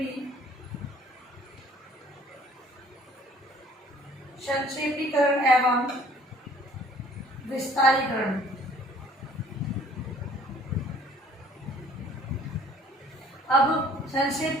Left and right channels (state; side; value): normal; both; correlation 0.55